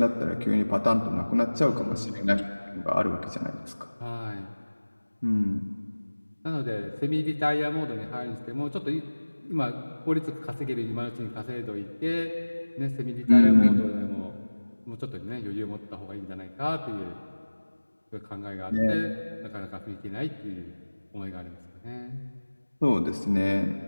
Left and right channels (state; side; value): inverted; both; correlation -1.00